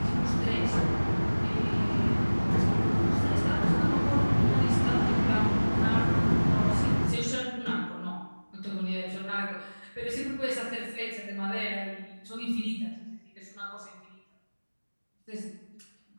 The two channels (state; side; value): inverted; both; correlation -1.00